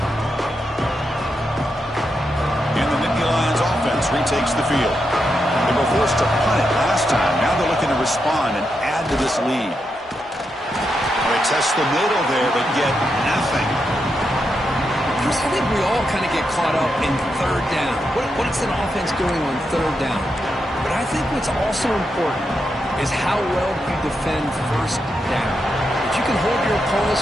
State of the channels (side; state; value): both; normal; correlation 0.84